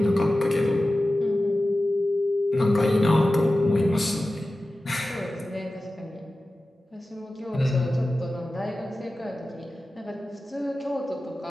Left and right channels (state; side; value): normal; both; correlation 0.95